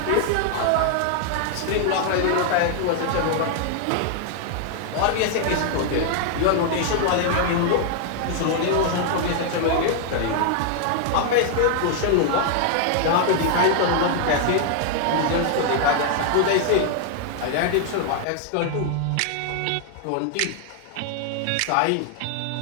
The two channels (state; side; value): different; both; correlation 0.00